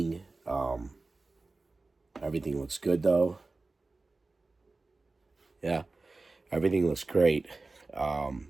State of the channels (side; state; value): left; quieter; 3.5 dB